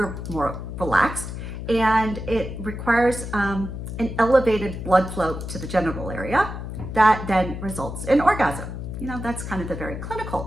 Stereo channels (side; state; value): left; noise; hum, 7 dB below the sound